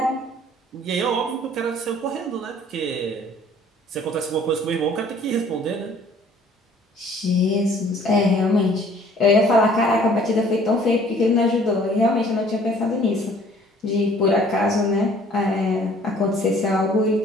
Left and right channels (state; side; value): normal; both; correlation 0.55